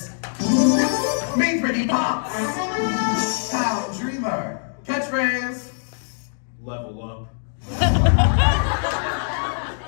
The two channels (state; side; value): silent; right; digital silence